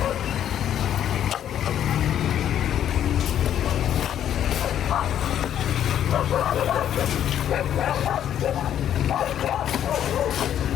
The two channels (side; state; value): right; quieter; 10.3 dB